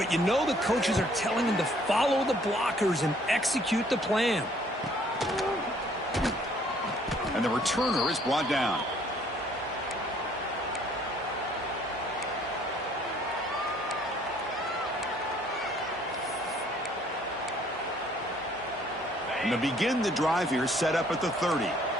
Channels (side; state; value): both; normal; correlation 0.61